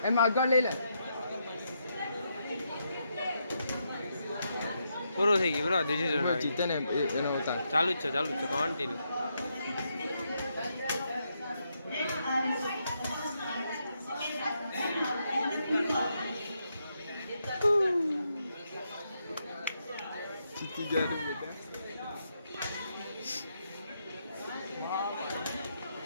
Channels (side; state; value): both; inverted; correlation -0.80